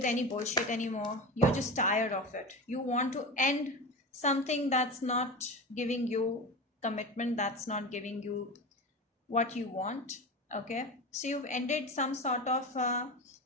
any bullshit anymore. You're just tired of it. You want to end something that's not giving you commitment, that's not giving you what you want. Okay, so you've ended some sort of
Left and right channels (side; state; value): both; normal; correlation 0.26